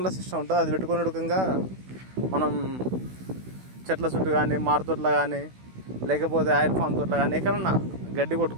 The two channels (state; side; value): late; left; 16 ms